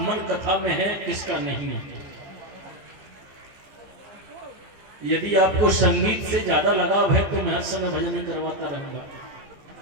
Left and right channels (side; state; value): left; late; 15 ms